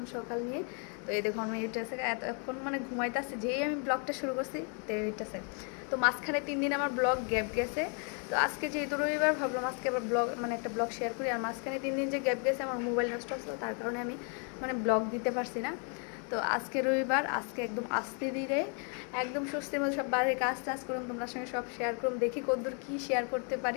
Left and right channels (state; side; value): quieter; right; 39.6 dB